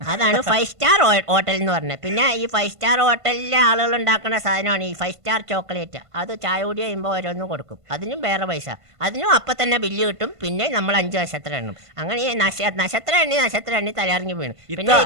അതാണ് 5 സ്റ്റാർ ഹോട്ടൽ എന്ന് പറഞ്ഞത്. പിന്നെ ഈ 5 സ്റ്റാർ ഹോട്ടലിലെ ആളുകൾ ഉണ്ടാക്കുന്ന സാധനമാണ് ഈ 5 സ്റ്റാർ ചോക്ലേറ്റ്. അത് ചായ കുടി കഴിയുമ്പോൾ ഓരോന്നും കൊടുക്കും. അതിനും വേറെ പൈസ. അതിനും അപ്പം തന്നെ ബില്ല് കിട്ടും. പിന്നെ നമ്മൾ 5 നക്ഷത്രം എണ്ണും. അങ്ങനെ നക്ഷത്രം എണ്ണി തലയിറങ്ങി വീണു. പിന്നെ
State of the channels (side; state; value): left; late; 1.5 ms